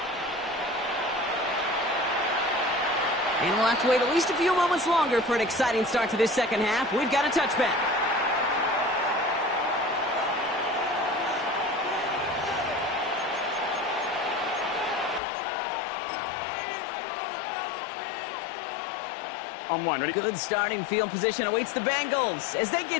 And we'll have to wait at least a few moments longer for an exciting start to this second half. We've got a touchback. On one, ready? Good starting field position awaits the Bengals as they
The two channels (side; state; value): right; drops out; at 15.2 s